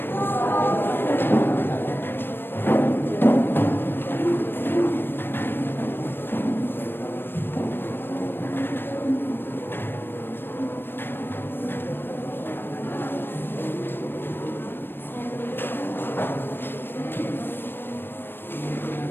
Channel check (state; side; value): late; right; 0.098 ms